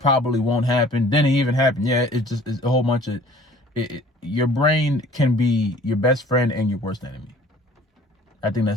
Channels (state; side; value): normal; both; correlation 0.50